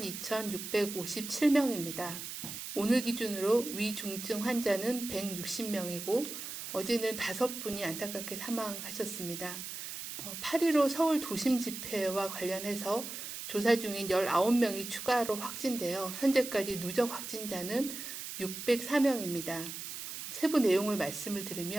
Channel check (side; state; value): right; noise; hiss, 8 dB below the sound